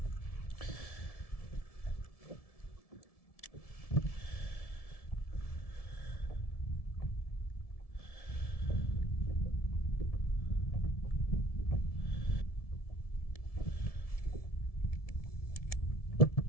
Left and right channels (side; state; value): right; late; 1.7 ms